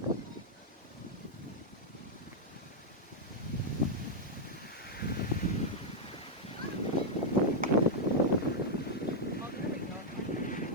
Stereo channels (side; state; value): both; normal; correlation -0.02